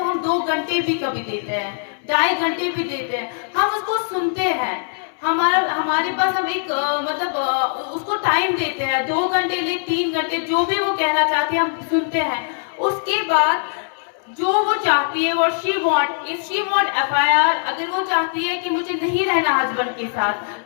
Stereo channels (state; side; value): silent; right; 63 dB below the other